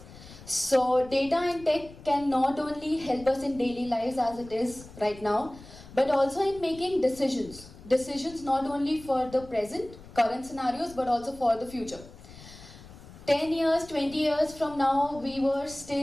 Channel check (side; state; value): left; noise; rumble, 18 dB below the sound